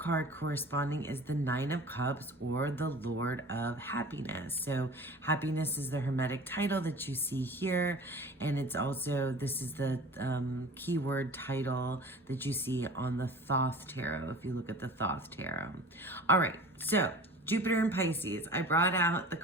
corresponding is the Nine of Cups, or the Lord of Happiness. So happiness is the Hermetic title that you see here, and it's also, this is the keyword title that you see on the Thoth tarot, if you look at the Thoth tarot. All right, so Jupiter in Pisces. I brought out the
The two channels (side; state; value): both; normal; correlation 0.40